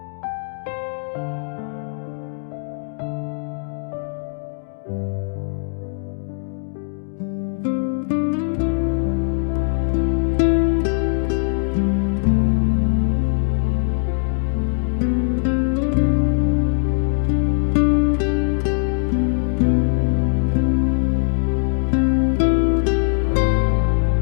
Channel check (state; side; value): silent; right; digital silence